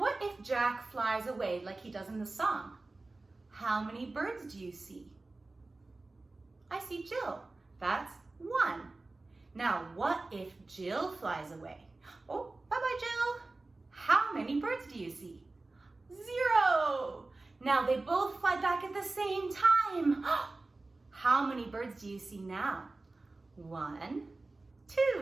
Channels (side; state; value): left; quieter; 3.2 dB